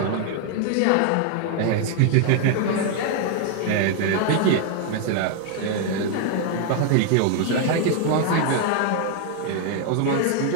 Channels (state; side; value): different; both; correlation 0.00